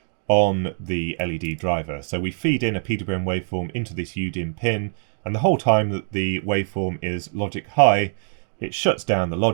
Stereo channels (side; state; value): left; silent; digital silence